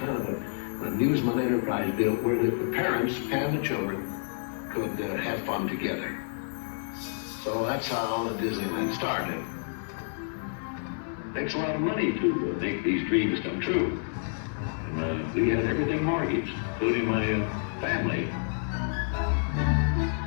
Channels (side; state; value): right; silent; 59 dB below the other